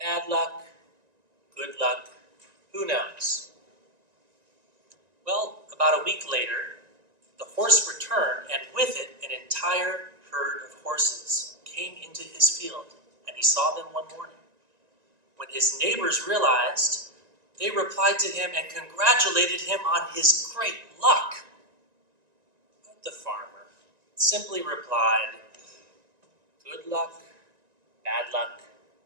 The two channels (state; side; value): late; left; 1.9 ms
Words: luck, good luck, who knows?" Well, about a week later, the horse returned, and with it an entire herd of horses came into his field, and he saw them one morning. When his neighbors realized, they replied to him and congratulated him on his great luck. But the farmer simply replied, "Good luck, bad luck,